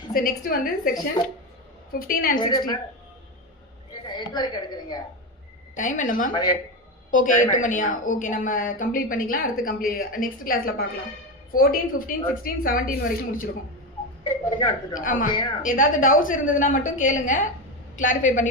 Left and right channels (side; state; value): both; normal; correlation 0.16